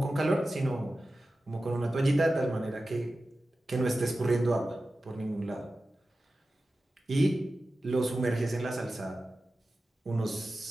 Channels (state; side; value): normal; both; correlation 0.94